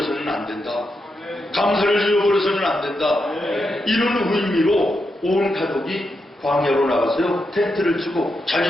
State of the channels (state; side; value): normal; both; correlation 0.85